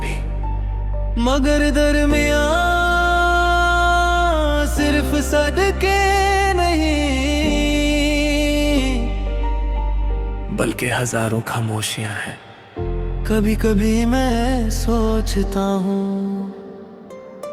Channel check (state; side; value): identical; both; correlation 1.00